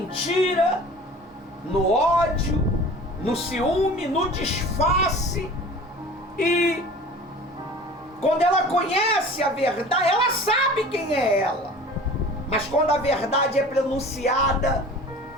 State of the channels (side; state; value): both; normal; correlation 0.42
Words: no ódio, no ciúme, no disfarce. E quando ela conhece a verdade, ela sabe quem é ela. Mas quando a verdade é pronunciada,